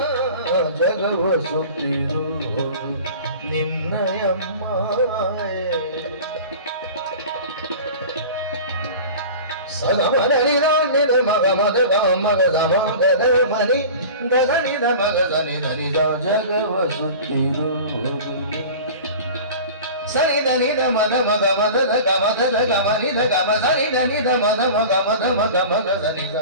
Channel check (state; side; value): inverted; both; correlation -0.37